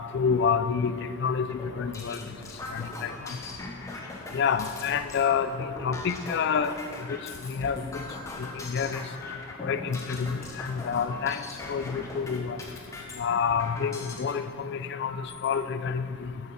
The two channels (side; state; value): right; quieter; 5.7 dB